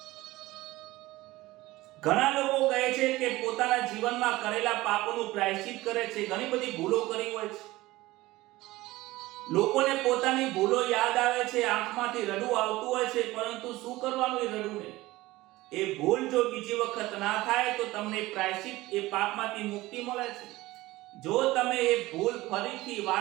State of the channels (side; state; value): left; quieter; 18.6 dB